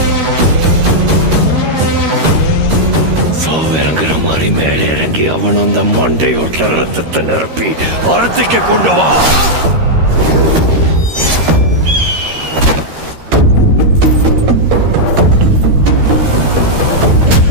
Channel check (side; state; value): left; late; 13 ms